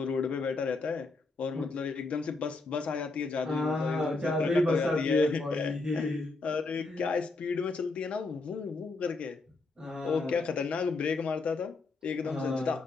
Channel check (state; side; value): quieter; right; 3.6 dB